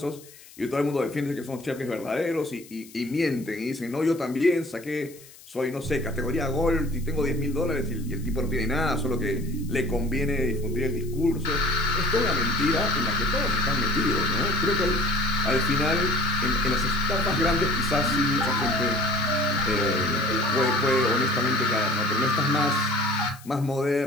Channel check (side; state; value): left; noise; hiss, 22 dB below the sound